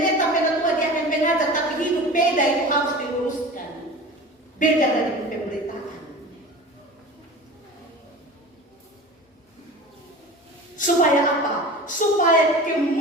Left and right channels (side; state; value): both; normal; correlation 0.36